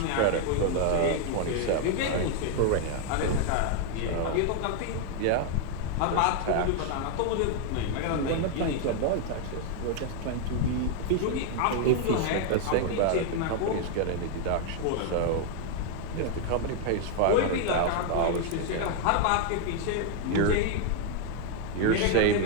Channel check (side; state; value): both; different; correlation 0.00